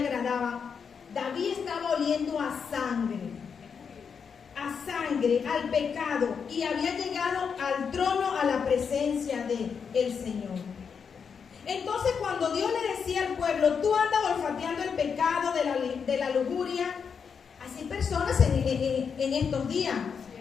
David estaba oliendo a sangre, al pecado, y había llegado al trono, a la presencia del Señor. Entonces cuando Dios le decía al pueblo, tú andas olfateando el pecado de la lujuria, así personas en estos días.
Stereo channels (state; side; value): quieter; right; 6.4 dB